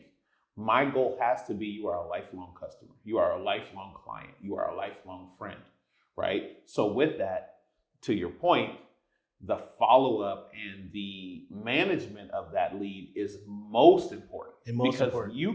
my goal has to be you are a lifelong customer. You are a lifelong client. You are a lifelong friend, right? So with that, to your point, the follow-up and the management of that lead is most important because you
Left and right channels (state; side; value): identical; both; correlation 1.00